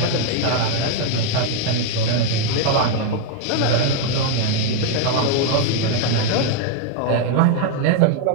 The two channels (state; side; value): different; both; correlation 0.00